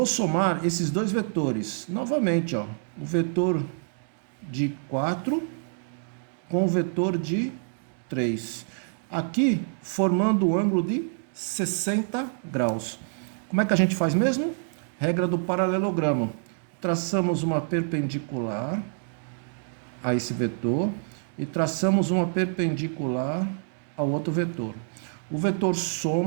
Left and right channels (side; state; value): left; silent; digital silence